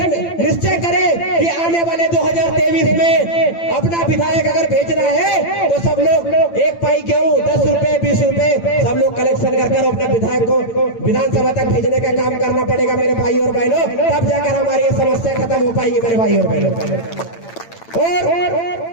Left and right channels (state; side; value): late; right; 8.9 ms